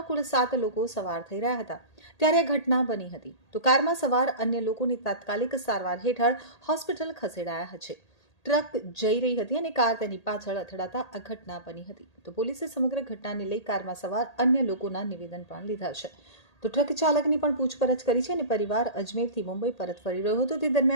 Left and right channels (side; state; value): right; late; 1.8 ms